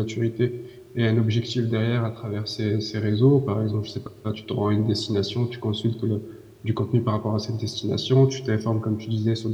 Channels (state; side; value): identical; both; correlation 1.00